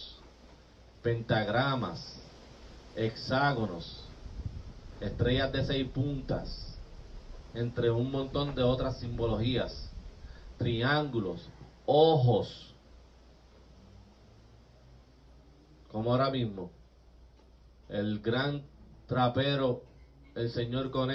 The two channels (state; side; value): identical; both; correlation 1.00